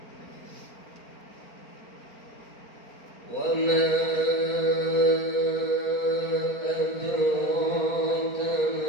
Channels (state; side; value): late; right; 4.4 ms